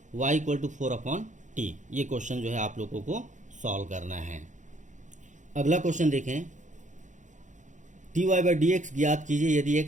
y equal to 4 upon t. ये क्वेश्चन जो है आप लोगों को सॉल्व करना है। अगला क्वेश्चन देखें, dy बाई डी एक्स ज्ञात कीजिए यदि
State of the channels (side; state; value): left; late; 0.36 ms